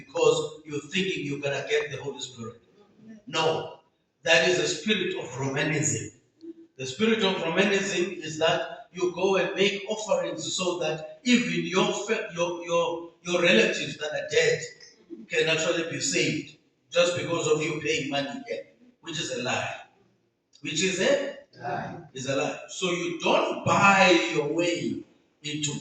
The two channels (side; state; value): both; identical; correlation 1.00